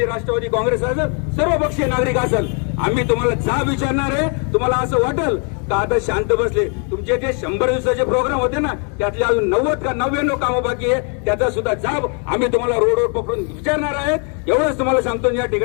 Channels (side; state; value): right; quieter; 39.1 dB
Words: राष्ट्रवादी काँग्रेस असेल, सर्वपक्षीय नागरिक असेल, आम्ही तुम्हाला जाब विचारणार आहे. तुम्हाला असं वाटेल का आता शांत बसले, तुमचे जे 100 दिवसाचे प्रोग्राम होते ना, त्यातले अजून 90 का 99 कामं बाकी आहे, त्याचा सुद्धा जाब आम्ही तुम्हाला रोडवर पकडून विचारणार आहेत. एवढंच तुम्हाला सांगतो. या